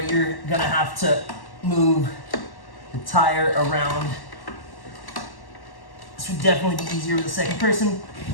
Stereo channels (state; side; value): late; right; 1.1 ms